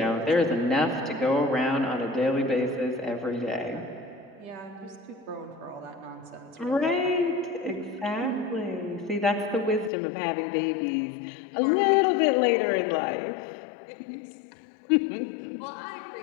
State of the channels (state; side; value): drops out; right; at 9.9 s